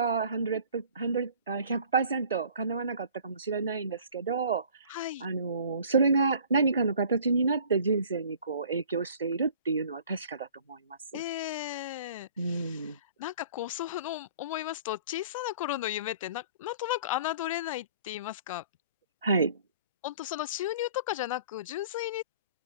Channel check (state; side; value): inverted; both; correlation -0.49